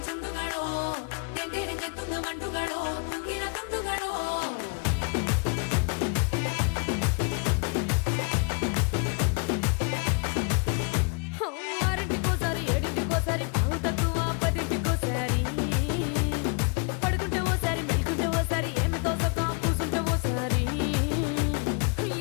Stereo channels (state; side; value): quieter; right; 36.3 dB